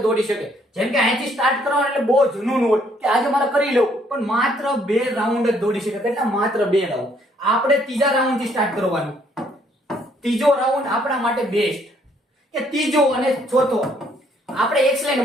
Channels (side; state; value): both; normal; correlation 0.66